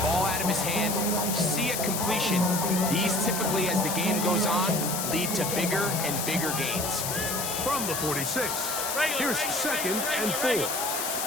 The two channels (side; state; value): left; noise; hiss, 2 dB below the sound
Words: ball out of his hand, see a completion. These typically, as the game goes on, lead to bigger and bigger gains. From the 46, here's second and 4.